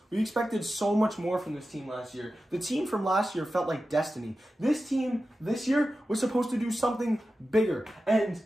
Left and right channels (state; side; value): normal; both; correlation 0.93